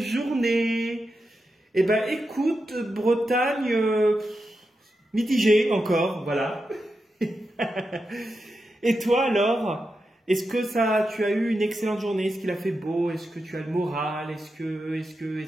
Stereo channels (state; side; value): normal; both; correlation 0.88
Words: Eh ben écoute, Bretagne, mitigée encore, voilà. Et toi alors? Est-ce que tu as eu une excellente journée? Est-ce qu'il a fait beau? Est-ce que tu as le moral? Est-ce